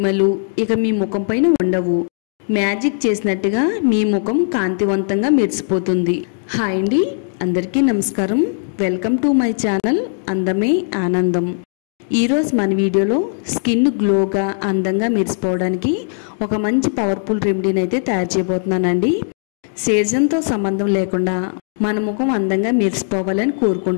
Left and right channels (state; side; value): silent; right; digital silence